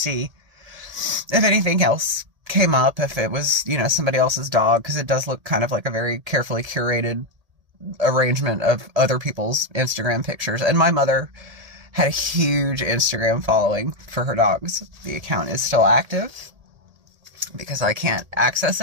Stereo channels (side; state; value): left; late; 1.8 ms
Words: if anything else came up, if it was, somebody else's dog, because it does look kind of like a very carefully curated arrangement of other people's Instagram pictures. And my mother had a huge Instagram following for her dogs. The account is still active because I can't access